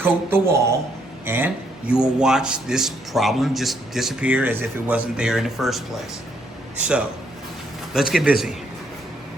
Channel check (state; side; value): normal; both; correlation 0.72